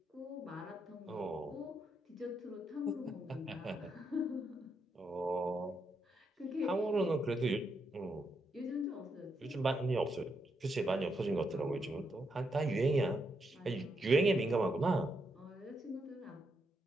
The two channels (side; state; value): both; normal; correlation 0.80